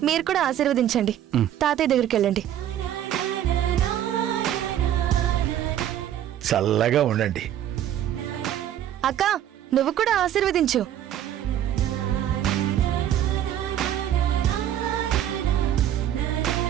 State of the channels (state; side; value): quieter; left; 11.1 dB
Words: మీరు కూడా ఆశీర్వదించండి. తాతయ్య దగ్గరికి వెళ్ళండి. చల్లగా ఉండండి. అక్క నువ్వు కూడా ఆశీర్వదించు.